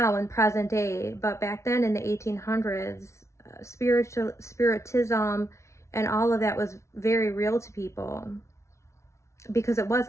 in present day. But back then in the 1800s, spiritism and all of that was very real to people, because it was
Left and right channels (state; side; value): late; right; 0.14 ms